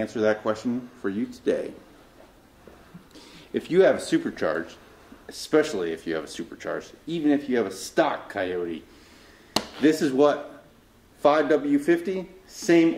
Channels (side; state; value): both; identical; correlation 1.00